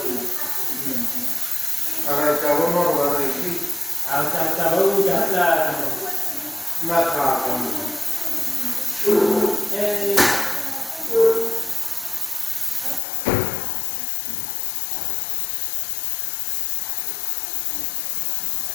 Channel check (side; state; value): right; drops out; at 13.0 s